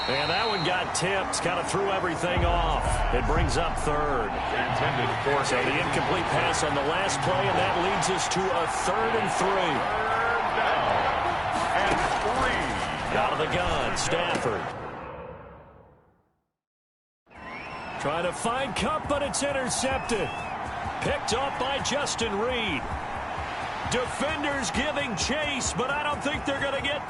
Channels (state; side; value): identical; both; correlation 1.00